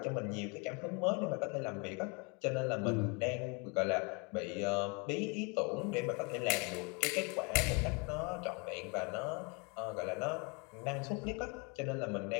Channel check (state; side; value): quieter; right; 31.8 dB